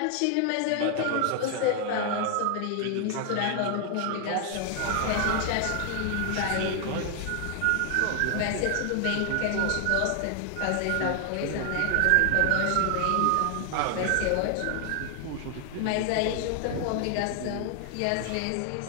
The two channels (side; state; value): both; different; correlation 0.00